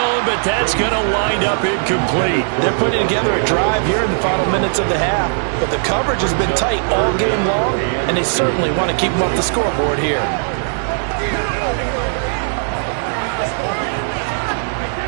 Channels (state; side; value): silent; left; digital silence